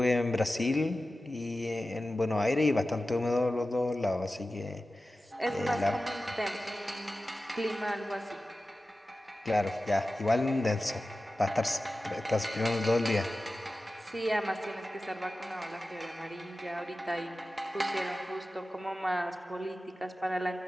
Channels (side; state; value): both; normal; correlation 0.95